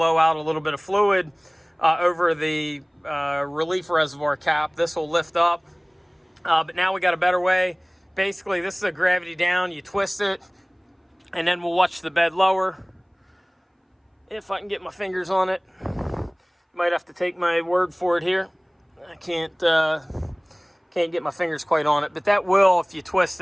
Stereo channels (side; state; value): both; identical; correlation 1.00